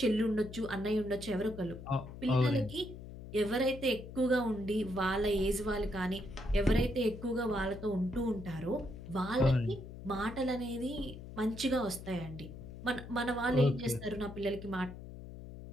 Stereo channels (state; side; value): noise; left; hum, 12 dB below the sound